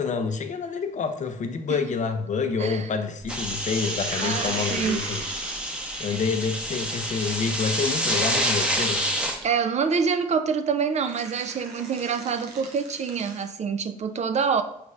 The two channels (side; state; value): both; normal; correlation 0.29